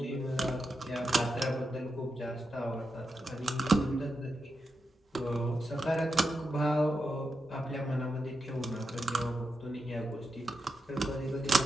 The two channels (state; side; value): normal; both; correlation 0.87